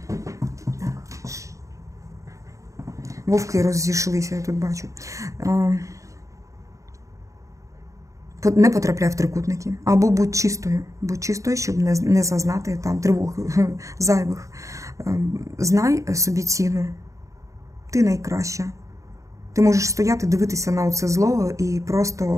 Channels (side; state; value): left; late; 0.15 ms